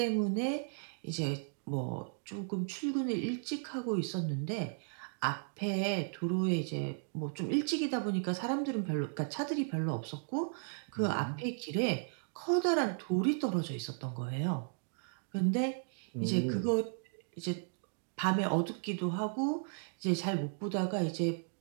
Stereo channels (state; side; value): silent; left; digital silence